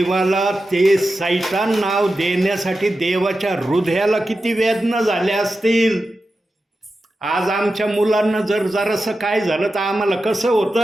ते सैतान नाव देण्यासाठी देवाच्या हृदयाला किती वेदना झाल्या असतील. आज आमच्या मुलांना जर जरासं काय झालं तर आम्हाला कसं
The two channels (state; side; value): normal; both; correlation 0.92